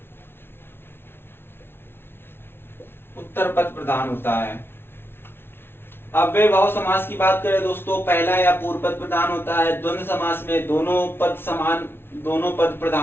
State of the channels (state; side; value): late; right; 0.11 ms